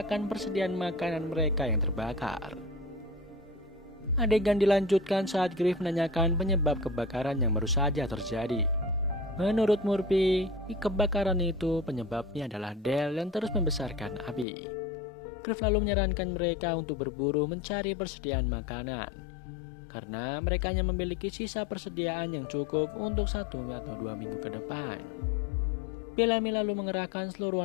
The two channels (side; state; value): right; drops out; at 14.5 s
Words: persediaan makanan mereka yang terbakar. Adegan dilanjutkan saat Griff menanyakan penyebab kebakaran yang baru saja terjadi. Menurut Murphy, kebakaran itu penyebabnya adalah Del yang terus membesarkan api. Griff lalu menyarankan mereka untuk berburu mencari persediaan makanan, karena mereka hanya memiliki sisa persediaan yang cukup untuk 1 atau 2 minggu ke depan. Bellamy lalu mengerahkan seluruh